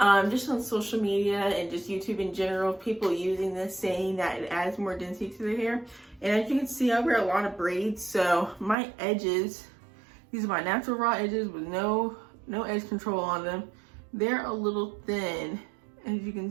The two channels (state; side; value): drops out; left; at 8.8 s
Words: just on social media and just YouTube in general, people using this, saying that it adds more density to their hair. And as you can see, I wear a lot of braids, so my edges, these are my natural raw edges with no edge control on them. They're a little thin, as you can